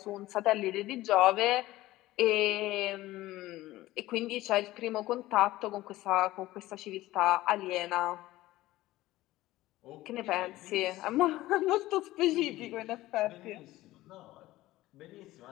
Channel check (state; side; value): quieter; right; 16.9 dB